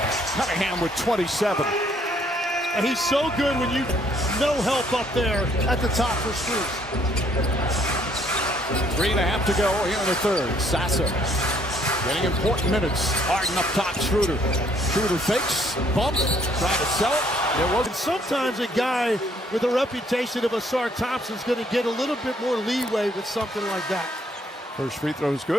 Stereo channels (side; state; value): both; normal; correlation 0.65